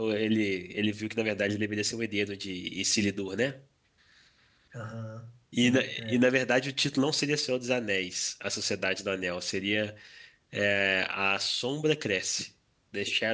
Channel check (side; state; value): both; identical; correlation 1.00